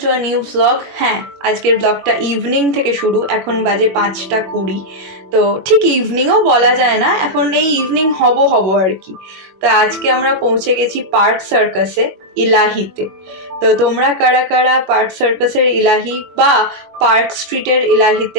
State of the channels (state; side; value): late; left; 21 ms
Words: to a new blog. হ্যাঁ, আজকের ব্লগটা ইভিনিং থেকে শুরু। এখন বাজে 5:20। তো ঠিক ইভিনিংও বলা যায় না, এখন এই ইভিনিং হব আর কি। তো আজকে আমরা পৌঁছে গেছি পার্ক সার্কাসে, ইলাহিতে। তো তোমরা কারা কারা পার্ক সার্কাসের ইলাহি বা পার্ক স্ট্রিটের